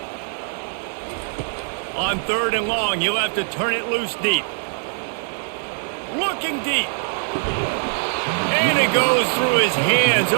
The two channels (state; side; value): silent; left; 56 dB below the other